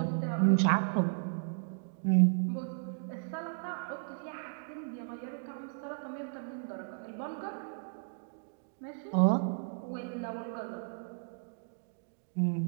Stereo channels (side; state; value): left; silent; digital silence